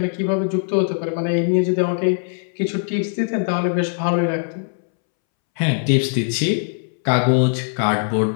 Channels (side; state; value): right; silent; 64 dB below the other